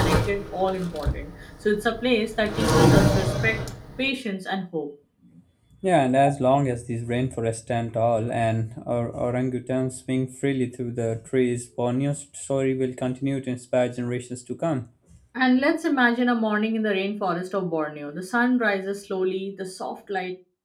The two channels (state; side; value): identical; both; correlation 1.00